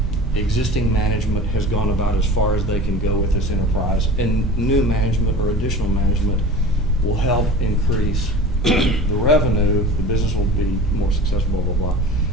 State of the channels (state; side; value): normal; both; correlation 0.38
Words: existing management has gone about as far as they can go with this enterprise, and new management or additional management will help increase the revenue, the business will be more successful, blah, blah, blah.